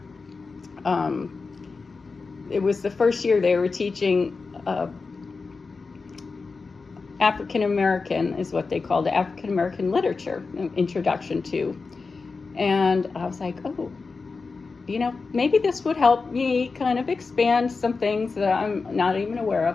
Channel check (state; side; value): quieter; right; 4.4 dB